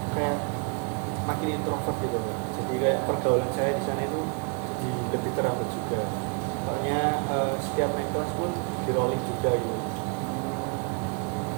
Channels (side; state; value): left; quieter; 37.4 dB